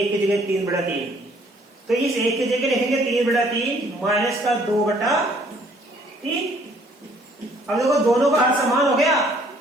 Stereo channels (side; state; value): both; normal; correlation 0.61